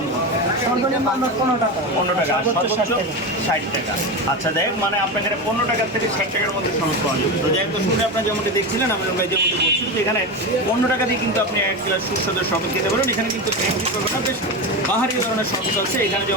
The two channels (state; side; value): normal; both; correlation 0.19